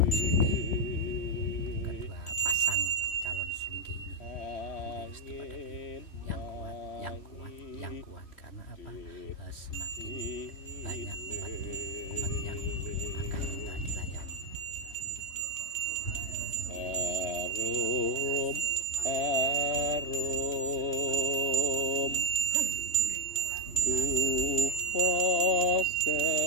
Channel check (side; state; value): right; late; 3.1 ms